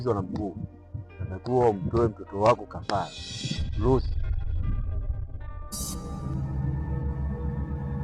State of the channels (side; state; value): both; identical; correlation 1.00